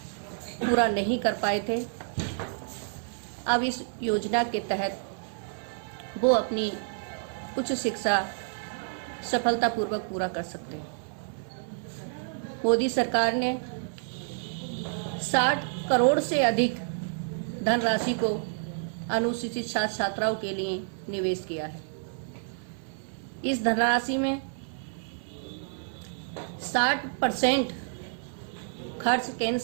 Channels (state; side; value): silent; left; 57 dB below the other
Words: पूरा नहीं कर पाए थे, अब इस योजना के तहत वो अपनी उच्च शिक्षा सफलतापूर्वक पूरा कर सकते हैं। मोदी सरकार ने 60 करोड़ से अधिक धनराशि को अनुसूचित छात्र छात्राओं के लिए निवेश किया है। इस धनराशि में 60% खर्च केंद्र